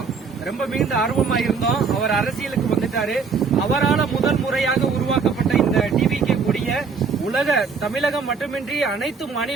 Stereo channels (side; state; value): left; quieter; 5.3 dB